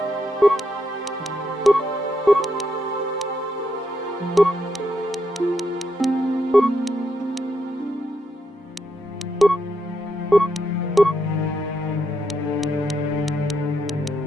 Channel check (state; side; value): normal; both; correlation 0.80